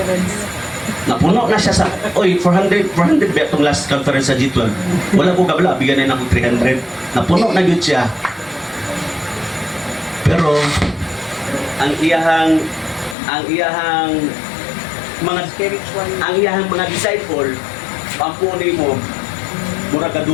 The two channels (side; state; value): right; drops out; at 13.2 s